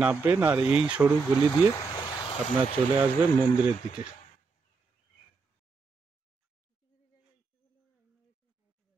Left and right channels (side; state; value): left; quieter; 4.6 dB